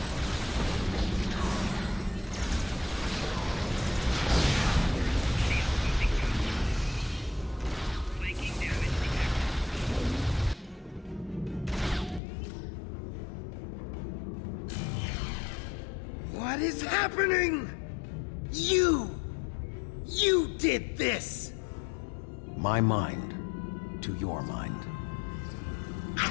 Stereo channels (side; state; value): right; drops out; at 12.2 s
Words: What is happening? You did this! My mind to your mind.